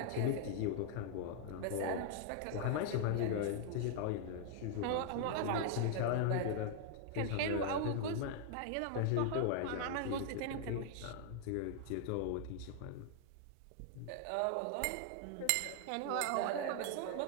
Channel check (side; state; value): both; different; correlation 0.00